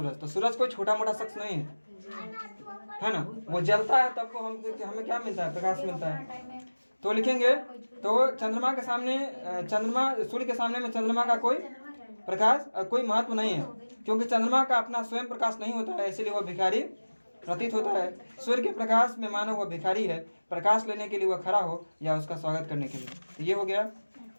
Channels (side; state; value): both; inverted; correlation -1.00